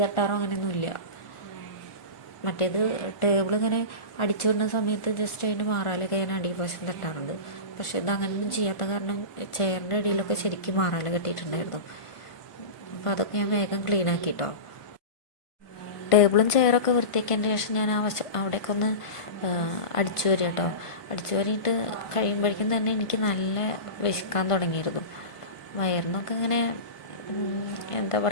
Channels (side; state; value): right; late; 1.5 ms